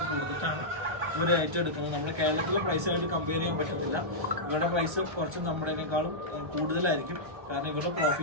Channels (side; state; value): left; late; 1.3 ms